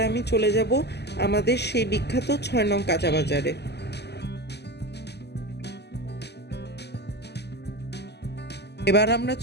আমি চলে যাব আমাদের সেই বিখ্যাত 6 নং কাঁচা বাজারে। এবার আমরা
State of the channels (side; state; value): right; late; 0.49 ms